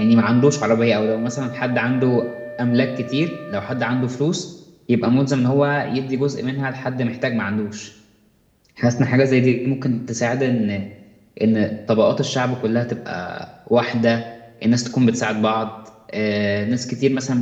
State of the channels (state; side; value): identical; both; correlation 1.00